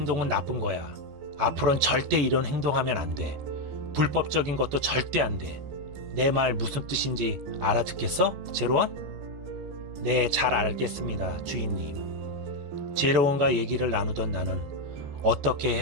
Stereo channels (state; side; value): late; left; 14 ms